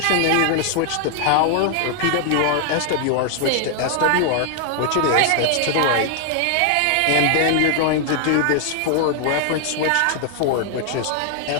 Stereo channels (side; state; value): both; different; correlation 0.00